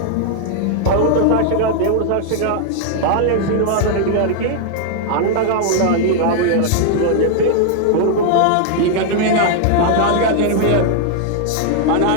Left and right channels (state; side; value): different; both; correlation -0.01